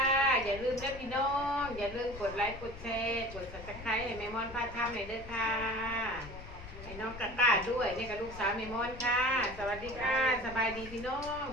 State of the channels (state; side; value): noise; left; rumble, 13 dB below the sound